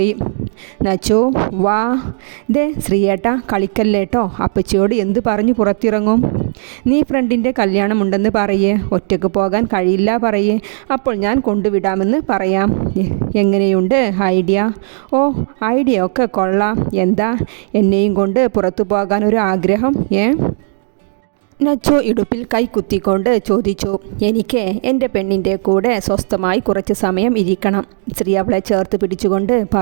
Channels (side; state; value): left; silent; digital silence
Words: നച്ചു, വാ. ദേ ശ്രീയേട്ട, കളിക്കല്ലേട്ടോ. അപ്പച്ചിയോട് എന്ത് പറഞ്ഞു പുറത്തിറങ്ങും? നീ ഫ്രണ്ടിൻ്റെ കല്യാണമുണ്ടെന്ന് പറയേ. ഒറ്റയ്ക്ക് പോകാൻ കഴിയില്ല പറയേ. അപ്പോൾ ഞാൻ കൊണ്ടുവിടാമെന്ന് പറയാം. എങ്ങനെയുണ്ട് ഐഡിയ? ഓ, ഐഡിയ ഒക്കെ കൊള്ളാം. എന്താ എന്നെയും കൊണ്ട് പുറത്തു പോകാൻ ഒരു ആഗ്രഹം? നച്ചു ഇടുപ്പിൽ കൈ കുത്തിക്കൊണ്ട് ചോദിച്ചു. എനിക്ക് എൻ്റെ പെണ്ണിൻ്റെ കൂടെ സ്വസ്ഥമായി കുറച്ച് സമയം ഇരിക്കണം. ശ്രീ അവളെ ചേർത്ത് പിടിച്ചുകൊണ്ട്